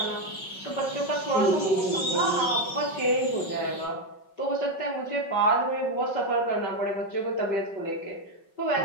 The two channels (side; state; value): right; late; 5.4 ms